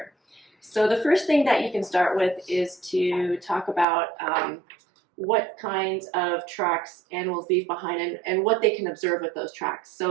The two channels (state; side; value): drops out; left; at 3.9 s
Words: So the first thing that you can start with is to talk about what kinds of tracks animals leave behind and what they can observe with those tracks.